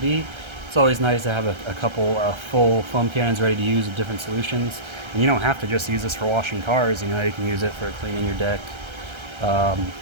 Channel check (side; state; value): left; late; 1.3 ms